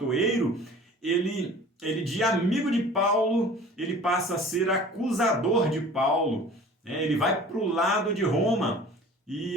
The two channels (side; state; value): both; normal; correlation 0.45